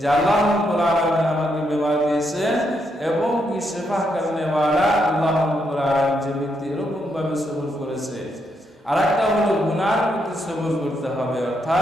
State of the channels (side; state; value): both; normal; correlation 0.79